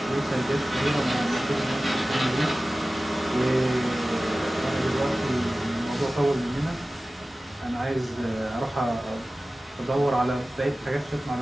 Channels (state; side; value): normal; both; correlation 0.96